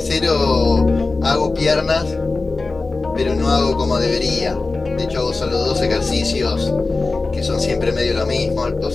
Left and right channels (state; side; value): quieter; right; 3.6 dB